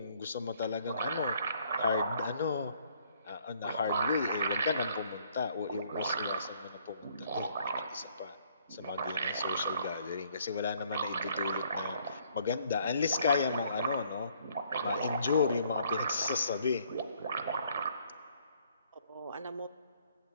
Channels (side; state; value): both; inverted; correlation -0.64